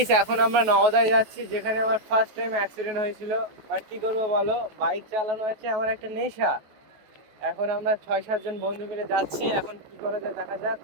এখন আমরা নওদায় যাচ্ছি, যেখানে আমার ফার্স্ট টাইম অ্যাক্সিডেন্ট হয়েছিল। বাট কি করবো বলো, বাইক চালানো হচ্ছে আমার একটা নেশা। এখন আমরা 6-7 জন বন্ধু মিলে যাচ্ছি, এখন কি করা যায় দেখা যাক।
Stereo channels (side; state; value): left; late; 14 ms